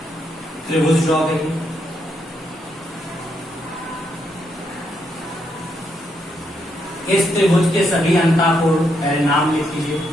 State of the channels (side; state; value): both; normal; correlation 0.78